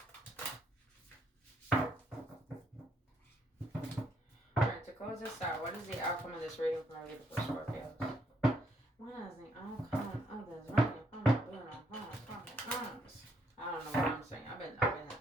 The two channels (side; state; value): both; normal; correlation 0.72